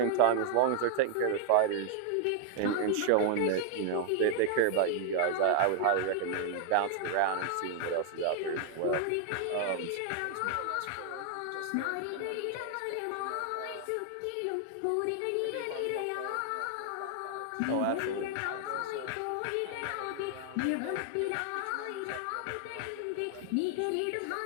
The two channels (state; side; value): different; both; correlation 0.00